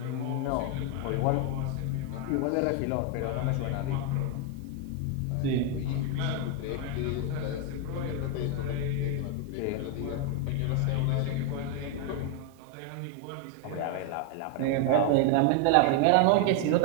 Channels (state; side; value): different; both; correlation 0.01